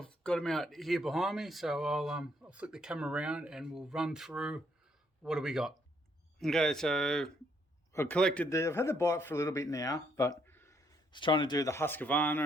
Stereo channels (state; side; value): normal; both; correlation 0.71